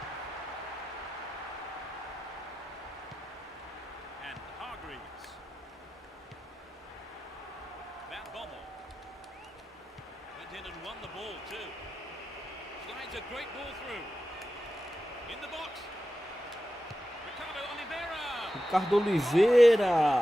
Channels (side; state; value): both; normal; correlation 0.92